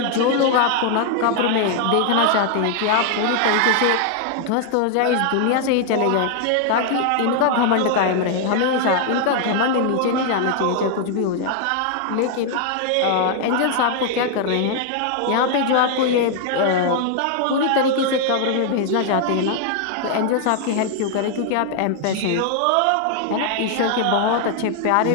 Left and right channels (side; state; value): both; different; correlation 0.00